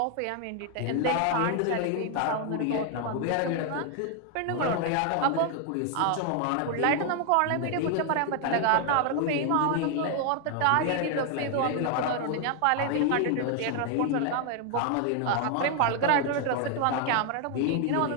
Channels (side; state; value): both; different; correlation 0.00